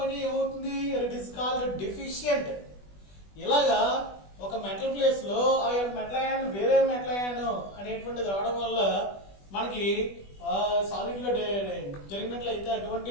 ఏమవుతుంది? It is called deficient. ఇలాగా ఒక మెటల్ ప్లేస్ లో ఆ యొక్క మెటల్ అయాన్ వేరే మెటల్ అయాన్ అనేటువంటిది రావడం వల్ల మనకి సాలిడ్ లో జరిగినట్లయితే అటువంటి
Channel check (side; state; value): right; late; 20 ms